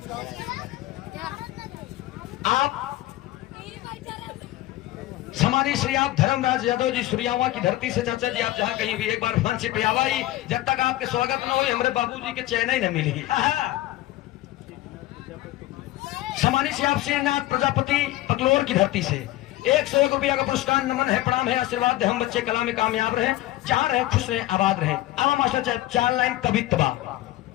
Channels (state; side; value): quieter; right; 16.1 dB